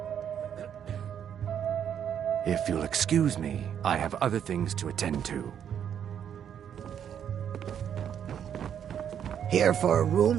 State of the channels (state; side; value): quieter; left; 8.8 dB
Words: If you'll excuse me, I have other things to attend to. Here for a